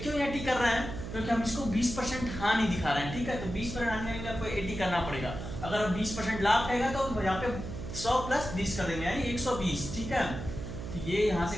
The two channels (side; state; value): right; noise; hum, 8 dB below the sound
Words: 80 कर रहे हैं, क्योंकि हम इसको 20% हानि दिखा रहे हैं, ठीक है। तो 20% हानि के लिए आपको 80 करना पड़ेगा। अगर 20% लाभ रहेगा तो यहाँ पे 100 + 20 कर देंगे, यानी 120, ठीक है। तो ये यहाँ